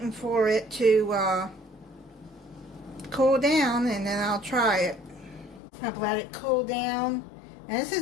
for it to cool down, and then I'll try it. I've let it cool down. And this is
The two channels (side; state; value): right; drops out; at 5.6 s